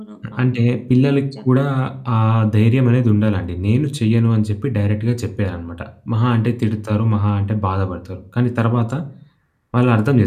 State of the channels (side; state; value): both; identical; correlation 1.00